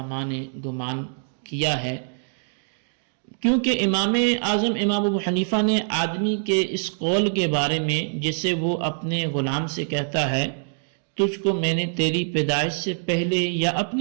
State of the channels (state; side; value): silent; left; digital silence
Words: نے گمان کیا ہے، کیونکہ امام اعظم امام ابو حنیفہ نے آدمی کے اس قول کے بارے میں جسے وہ اپنے غلام سے کہتا ہے تجھ کو میں نے تیری پیدائش سے پہلے یا